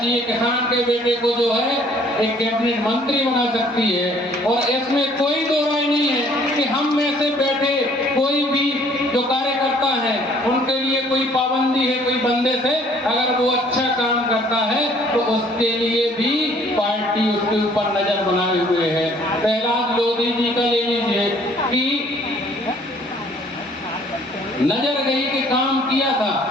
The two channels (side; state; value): both; normal; correlation 0.59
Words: किसान के बेटे को जो है एक कैबिनेट मंत्री बना सकती है। और इसमें कोई दो राय नहीं है कि हम में से बैठे कोई भी जो कार्यकर्ता है उनके लिए कोई पाबंदी है कोई बंदिश है। अगर वो अच्छा काम करता है तो उसके लिए भी पार्टी उसके ऊपर नजर बनाए हुए है। प्रहलाद लोधी जी का ले लीजिए कि नजर गई कि काम किया था,